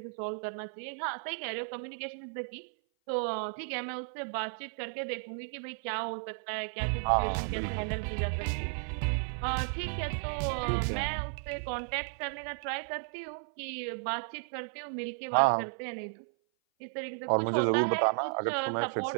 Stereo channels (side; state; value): left; silent; 55 dB below the other